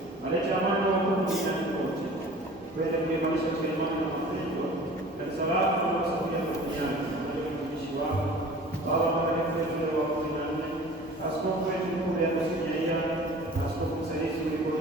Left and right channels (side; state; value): both; normal; correlation 0.44